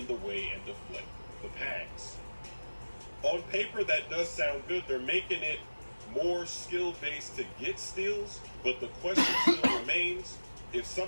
the way and deflect the pass. On paper, that does sound good. They're making it more skill-based to get steals, but the question still remains, if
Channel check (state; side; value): inverted; both; correlation -1.00